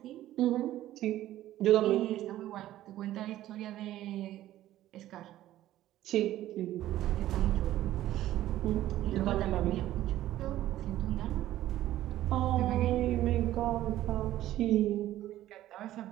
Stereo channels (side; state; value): left; quieter; 14.0 dB